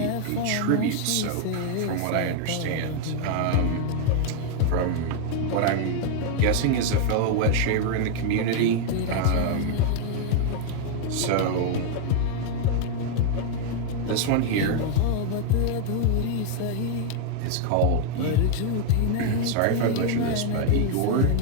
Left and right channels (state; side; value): different; both; correlation 0.00